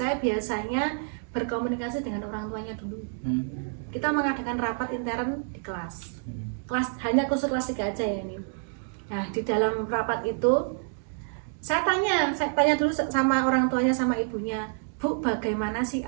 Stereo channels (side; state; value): left; silent; 59 dB below the other